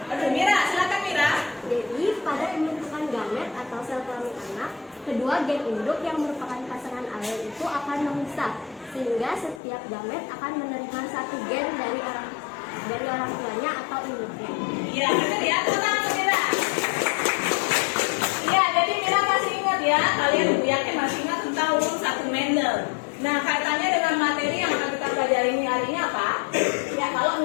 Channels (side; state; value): right; drops out; at 9.6 s